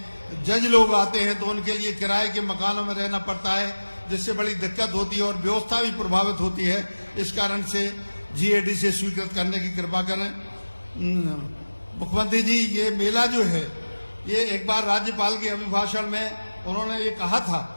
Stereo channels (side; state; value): both; inverted; correlation -1.00